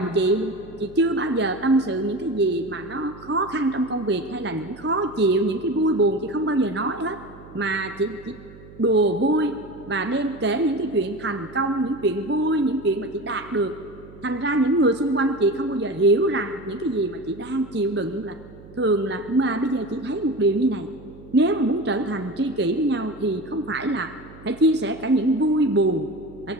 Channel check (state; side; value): noise; right; hum, 19 dB below the sound